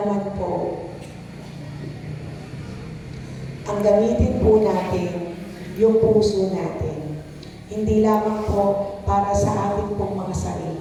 po, ang gamitin po natin yung puso natin. Hindi lamang po para sa ating pong mga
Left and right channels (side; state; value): both; identical; correlation 1.00